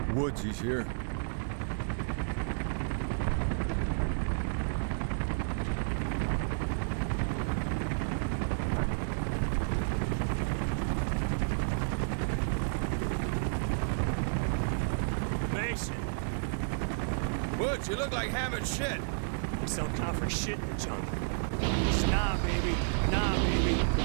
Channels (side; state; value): left; silent; digital silence